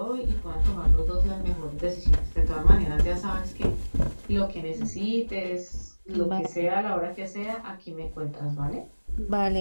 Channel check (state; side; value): inverted; both; correlation -1.00